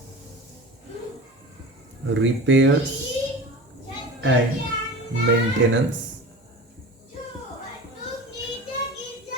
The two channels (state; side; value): normal; both; correlation 0.33